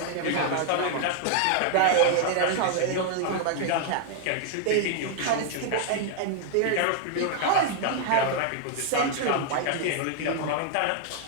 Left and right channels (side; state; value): both; different; correlation 0.00